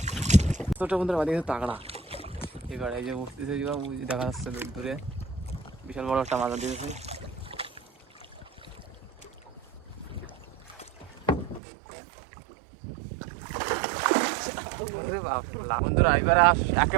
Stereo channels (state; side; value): drops out; left; at 11.6 s